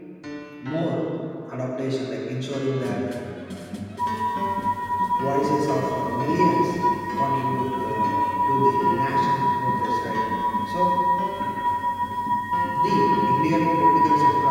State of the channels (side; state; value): both; identical; correlation 1.00